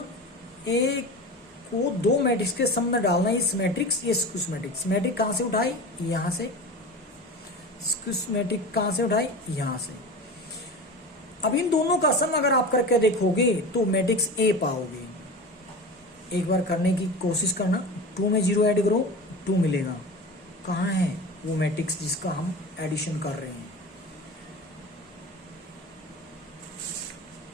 ए को 2 मैट्रिक्स के सम में डालना है, इस मैट्रिक्स, ये स्क्यू मैट्रिक्स कहाँ से उठाई, यहां से, स्क्यू मैट्रिक्स कहाँ से उठाई, यहां से। अब इन दोनों का सम अगर आप करके देखोगे तो मैट्रिक्स ए पाओगे। एक बार करने की कोशिश करना, 2 में 0 ऐड करो, 2 मिलेगा। कहाँ है वो मैट्रिक्स जिसका हम एडिशन कर रहे हैं,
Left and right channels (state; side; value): normal; both; correlation 0.30